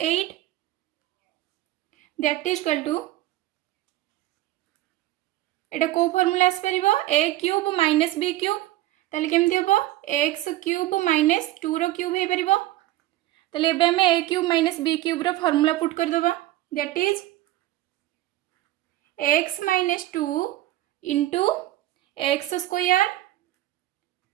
that is equal to एटा को फार्मूला आस परिबो a cube minus b cube. ताले केमति हबो x क्यूब माइनस 2 रो क्यूब हे परिबो. ताले एबे आमे a cube minus b cube रो फार्मूला पुट कर दबा, that is x minus 2 into x square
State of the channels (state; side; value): quieter; left; 15.8 dB